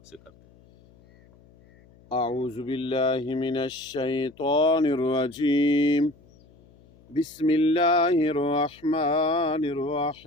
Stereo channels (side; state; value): left; noise; hum, 28 dB below the sound